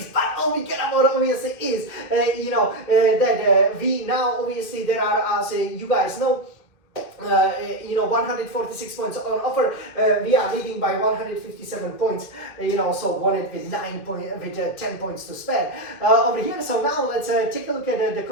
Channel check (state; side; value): late; right; 1.8 ms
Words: But all we care about obviously is, that we now obviously there are, as you guys know, 146 points on offer. We are leading by 157 points. So won it with 10 points to spare over here. So now let's take a look at the